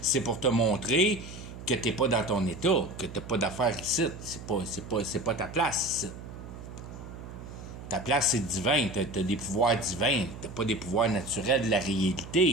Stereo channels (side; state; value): right; noise; hum, 12 dB below the sound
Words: c'est pour te montrer que t'es pas dans ton état, que t'as pas d'affaires ici. C'est pas ta place ici. Ta place, c'est divin. T'as des pouvoirs divins. T'as pas des pouvoirs naturels de la